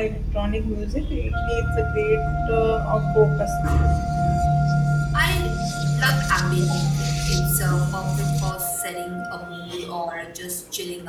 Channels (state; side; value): identical; both; correlation 1.00